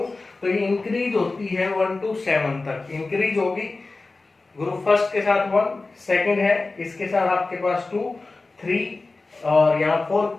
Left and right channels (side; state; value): right; quieter; 3.5 dB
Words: तो ये इंक्रीज होती है 1 to 7 तक इंक्रीज होगी। ग्रुप फर्स्ट के साथ 1, सेकंड है, इसके साथ आपके पास 2, 3 और यहाँ